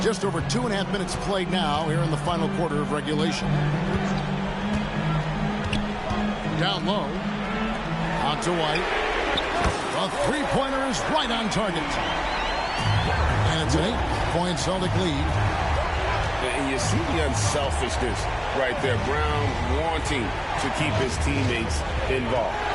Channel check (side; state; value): both; identical; correlation 1.00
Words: Just over 2.5 minutes played now here in the final quarter of regulation. Down low. Out to White. A three-pointer is right on target. And it's an 8-point Celtic lead. And you see the unselfishness right there. Brown wanting to keep his teammates involved.